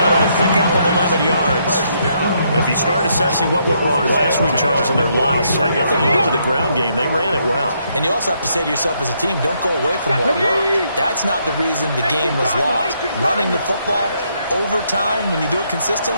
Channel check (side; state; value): both; inverted; correlation -0.74